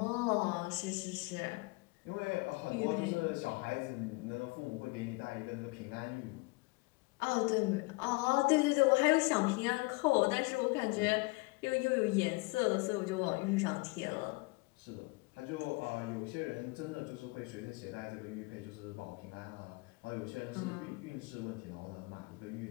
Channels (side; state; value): right; quieter; 26.2 dB